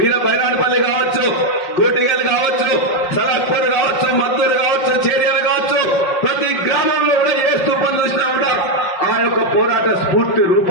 బైరాణపల్లి కావచ్చు, కోటిగల్ కావచ్చు, సలాక్పూర్ కావచ్చు, మద్దూరు కావచ్చు, చేర్యాలు కావచ్చు, ప్రతి గ్రామంలో కూడా ఏ స్తూపం చూసినా కూడా ఆ యొక్క పోరాట స్ఫూర్తి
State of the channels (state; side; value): late; right; 5.5 ms